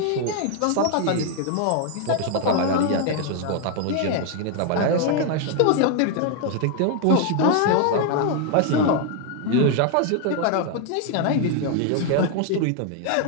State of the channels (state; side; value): different; both; correlation 0.00